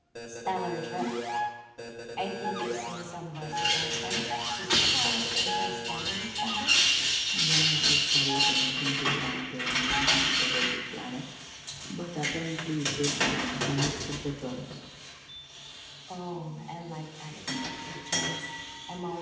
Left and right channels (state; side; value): identical; both; correlation 1.00